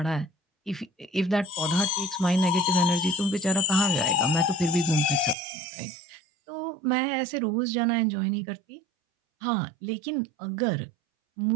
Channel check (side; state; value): left; drops out; at 5.4 s